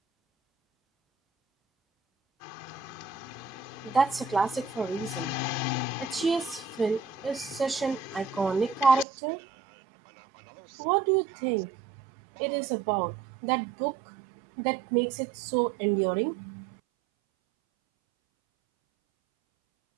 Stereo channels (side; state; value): left; drops out; at 9.1 s